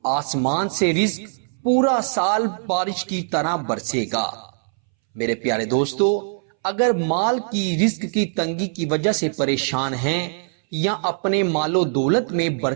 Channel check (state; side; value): silent; left; 63 dB below the other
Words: آسمان سے رزق پورا سال بارش کی طرح برسے گا۔ میرے پیارے دوستو، اگر مال کی رزق کی تنگی کی وجہ سے پریشان ہیں یا اپنے مال و دولت میں